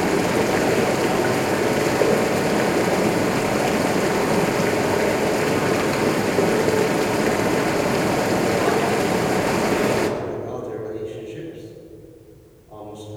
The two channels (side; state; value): both; identical; correlation 1.00